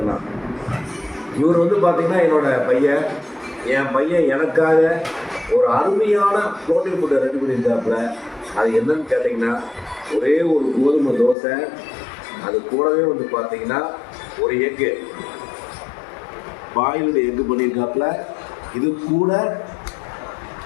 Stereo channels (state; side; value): drops out; right; at 11.4 s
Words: இவர் பார்த்தீங்கன்னா என்னோட பையன். என் பையன் எனக்காக ஒரு அருமையான புரோட்டீன் ஃபுட்டை ரெடி பண்ணியிருந்தாப்புல. அது என்னன்னு கேட்டிங்கன்னா, ஒரே ஒரு கோதுமை தோசை, அது கூடவே பார்த்தீங்கன்னா ஒரு எக்கு, பாயில்டு எக்கு பண்ணியிருக்காப்புல. இது கூட